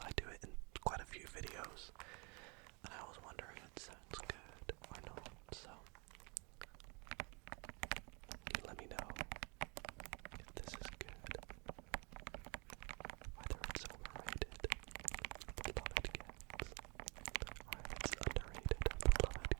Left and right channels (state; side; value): quieter; left; 31.6 dB